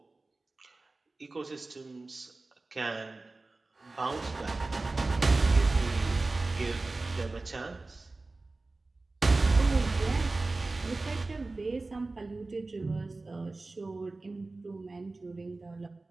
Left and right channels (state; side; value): quieter; left; 3.3 dB